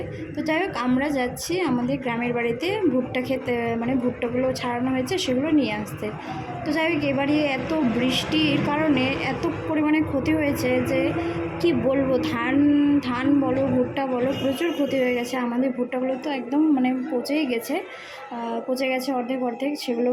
তো যাই হোক, আমরা যাচ্ছি আমাদের গ্রামের বাড়িতে ভুট্টা খেতে, মানে ভুট্টাগুলো ছাড়ানো হয়েছে সেগুলো নিয়ে আসতে। তো যাই হোক, এবারে এত বৃষ্টির কারণে এত পরিমাণে ক্ষতি হয়েছে যে কি বলবো। ধান ধান বলো, ভুট্টা বলো, প্রচুর ক্ষতি হয়ে গেছে। আমাদের ভুট্টাগুলো তো একদম মানে পচেই গেছে, পচে গেছে অর্ধেক অর্ধেক। সেগুলো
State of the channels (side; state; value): both; identical; correlation 1.00